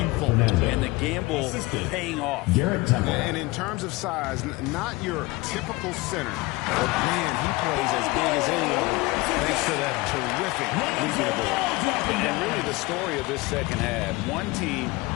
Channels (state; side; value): quieter; right; 22.1 dB